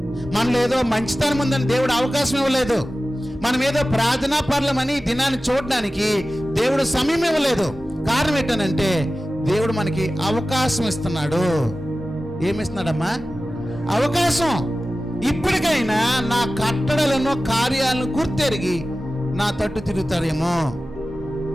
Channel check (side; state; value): both; normal; correlation 0.95